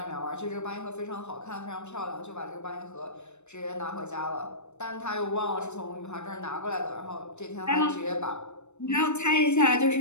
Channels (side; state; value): right; late; 0.82 ms